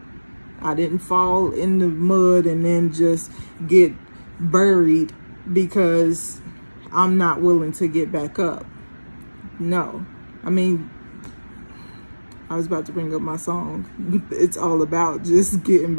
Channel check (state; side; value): inverted; both; correlation -1.00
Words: I didn't fall in the mud and then just get buried because I'm not willing to get back up. No. I mean, I was about to bring up my song. It's all about just getting